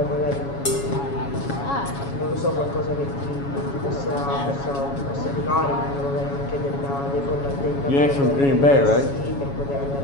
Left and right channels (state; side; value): late; right; 7.2 ms